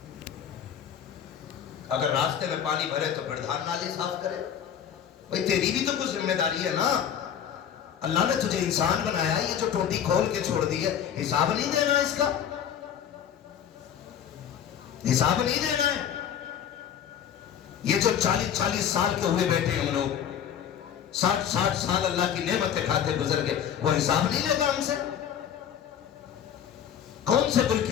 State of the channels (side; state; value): right; quieter; 9.0 dB